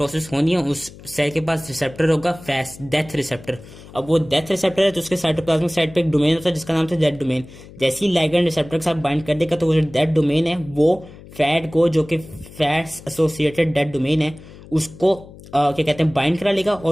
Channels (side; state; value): left; noise; hum, 19 dB below the sound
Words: होनी है उस सेल के पास रिसेप्टर होगा फैस डेथ रिसेप्टर। अब वो डेथ रिसेप्टर है तो उसके साइटोप्लाज्मिक साइड पे एक डोमेन होता है जिसका नाम था डेथ डोमेन। जैसे ही लाइगेंड रिसेप्टर के साथ बाइंड कर देगा तो वो जो डेथ डोमेन है वो फैट को, जो कि फैट्स एसोसिएटेड डेथ डोमेन है, उसको क्या कहते हैं बाइंड करा लेगा।